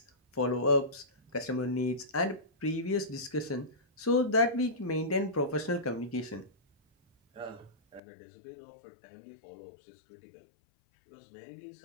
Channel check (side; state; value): right; drops out; at 8.0 s